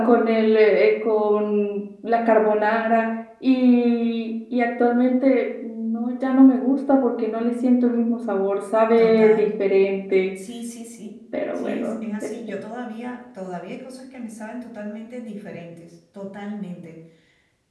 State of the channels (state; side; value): identical; both; correlation 1.00